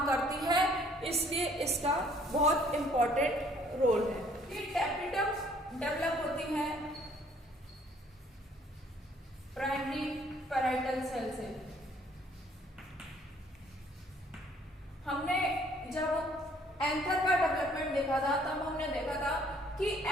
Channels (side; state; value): both; normal; correlation 0.60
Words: करती है, इसलिए इसका बहुत इंपॉर्टेंट रोल है। ये टैपेटम डेवलप होती है प्राइमरी पैराइटल सेल से। हमने जब एंथर का डेवलपमेंट देखा था तब हमने देखा था कि